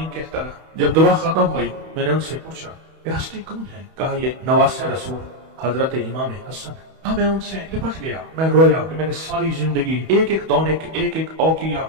कहता रहा। जब दुआ खत्म हुई मैंने उनसे पूछा ये हस्ती कौन है? कहा ये नवासे रसूल हजरत इमाम हसन। हाँ, मैं उनसे लिपट गया, मैं रोया कि मैंने सारी जिंदगी एक एक दौने एक एक औकिया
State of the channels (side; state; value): left; late; 31 ms